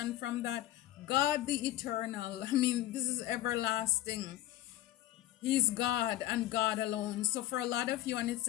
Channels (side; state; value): right; quieter; 14.2 dB